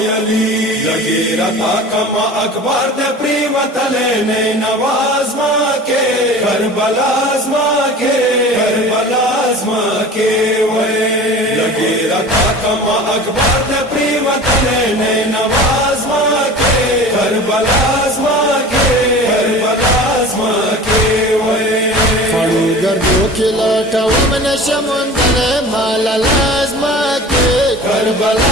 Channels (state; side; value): normal; both; correlation 0.39